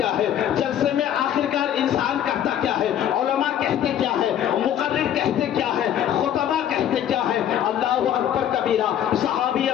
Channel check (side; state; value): right; quieter; 10.3 dB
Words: ہے؟ جلسے میں آخرکار انسان کرتا کیا ہے؟ علماء کہتے کیا ہے؟ مقرر کہتے کیا ہے؟ خطبہ کہتے کیا ہے؟ اللہ اکبر کبیرہ. صحابی